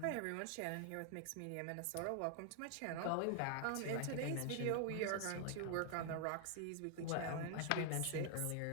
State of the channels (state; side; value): different; both; correlation 0.00